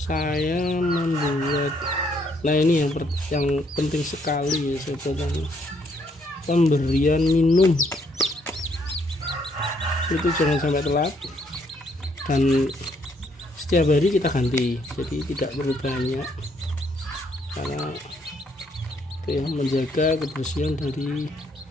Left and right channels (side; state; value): both; normal; correlation 0.70